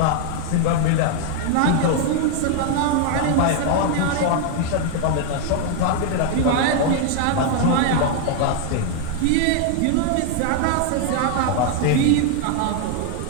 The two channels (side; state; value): both; different; correlation 0.00